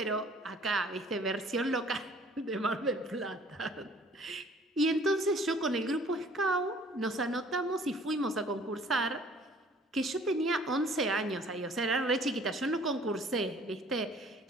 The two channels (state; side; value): normal; both; correlation 0.55